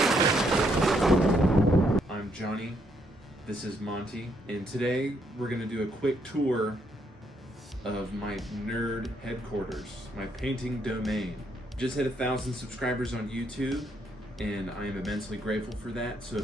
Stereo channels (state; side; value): normal; both; correlation 0.74